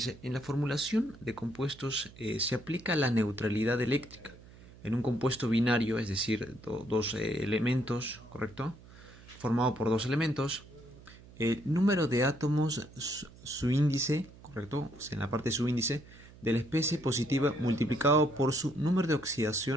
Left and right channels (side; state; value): right; noise; hum, 21 dB below the sound